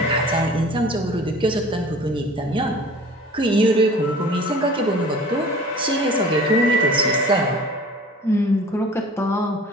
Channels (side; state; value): both; normal; correlation 0.44